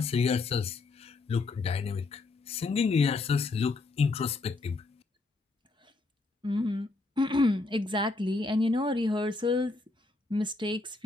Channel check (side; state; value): right; quieter; 3.5 dB